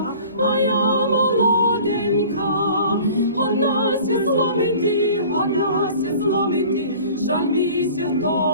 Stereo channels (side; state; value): both; inverted; correlation -0.46